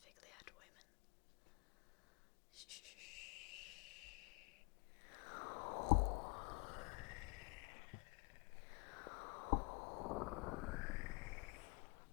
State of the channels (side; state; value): right; quieter; 30.6 dB